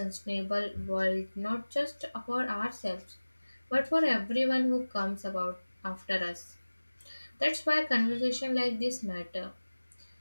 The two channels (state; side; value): inverted; both; correlation -1.00